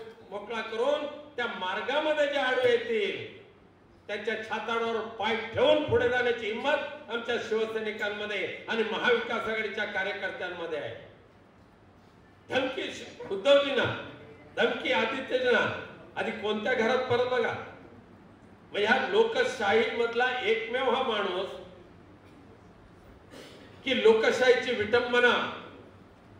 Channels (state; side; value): identical; both; correlation 1.00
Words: मोकळा करून त्या मार्गामध्ये जे आडवे येतील त्यांच्या छाताडावर पाय ठेवून पुढे जाण्याची हिंमत आमच्या शिवसैनिकांमध्ये आणि महाविकास आघाडीच्या कार्यकर्त्यांमध्ये आहे. धमकी उद्धवजींना, धमकी आदित्यजींना. आधी कोणत्या घरात परत बघा. ह्या लोकशाही मधला एकमेव हा माणूस की लोकशाहीची विटंबना,